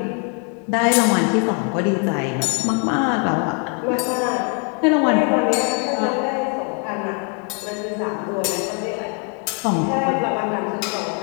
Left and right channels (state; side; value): quieter; right; 38.8 dB